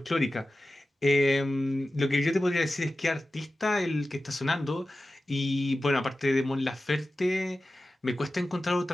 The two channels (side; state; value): both; normal; correlation 0.94